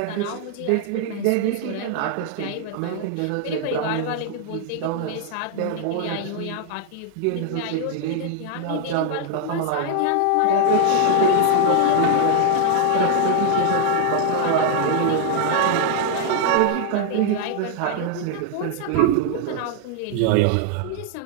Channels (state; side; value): different; both; correlation 0.00